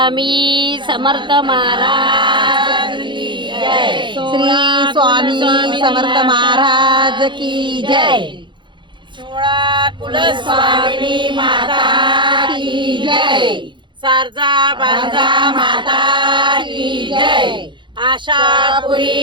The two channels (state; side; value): late; left; 0.23 ms